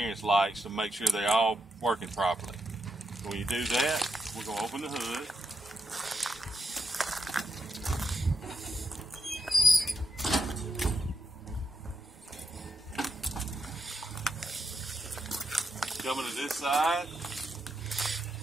lights, to make sure they're all working properly. When you do that, we're going to open the hood. Coming to this side,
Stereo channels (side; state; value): both; normal; correlation 0.83